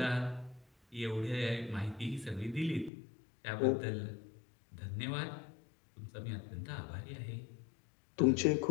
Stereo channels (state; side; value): drops out; right; at 2.9 s